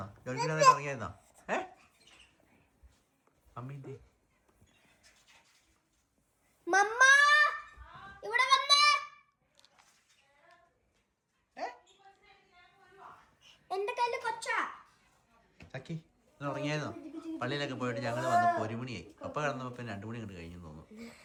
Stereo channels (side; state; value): both; identical; correlation 1.00